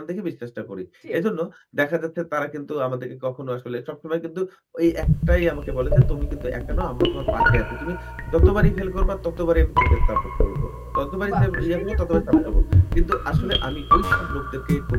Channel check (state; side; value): identical; both; correlation 1.00